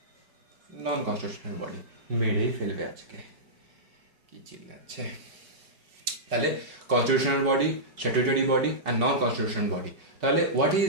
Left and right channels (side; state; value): left; late; 5.3 ms